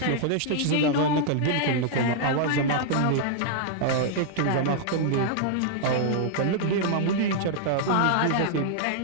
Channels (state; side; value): different; both; correlation -0.01